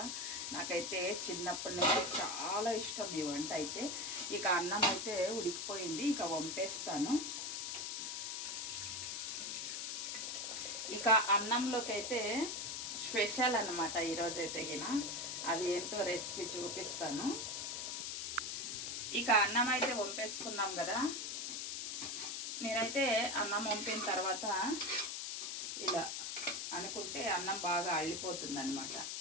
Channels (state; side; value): noise; left; hiss, 3 dB below the sound